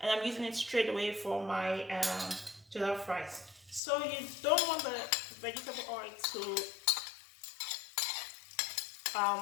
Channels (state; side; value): drops out; right; at 3.8 s